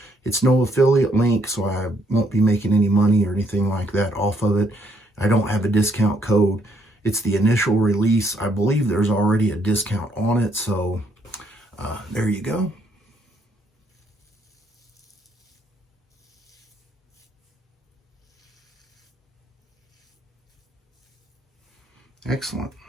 It's no affiliate link, so I won't be making any money or anything like that off of it. I don't have a discount code. It's the initial release. I believe there's already a discount on it, so there you go. Excellent.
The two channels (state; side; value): normal; both; correlation 0.71